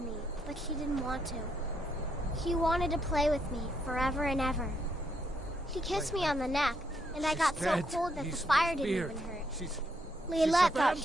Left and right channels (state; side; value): normal; both; correlation 0.76